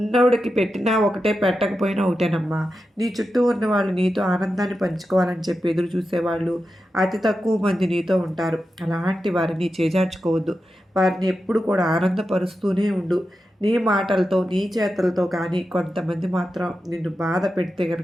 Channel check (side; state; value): both; normal; correlation 0.90